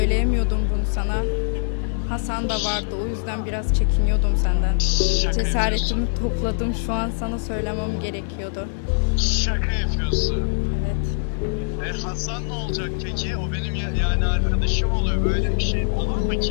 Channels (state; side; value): silent; right; digital silence